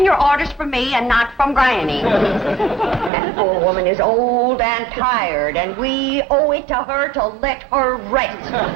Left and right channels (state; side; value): drops out; left; at 3.1 s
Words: your orders from me and not from Granny. That poor woman is old and tired, and we owe it to her to let her rest.